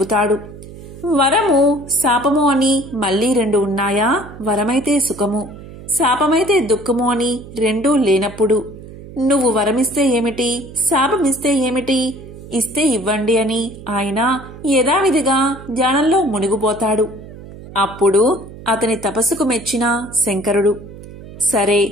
వరము శాపము అని మళ్ళీ 2 ఉన్నాయా? వరమైతే సుఖము, శాపమైతే దుఃఖము అని 2 లేనప్పుడు నువ్వు వరమిస్తే ఏమిటి, శాపమిస్తే ఏమిటి, ఇస్తే ఇవ్వండి అని ఆయన యథావిధిగా ధ్యానంలో మునిగిపోతాడు. అప్పుడు అతని తపస్సుకు మెచ్చిన శంకరుడు, సరే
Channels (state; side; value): noise; right; hum, 16 dB below the sound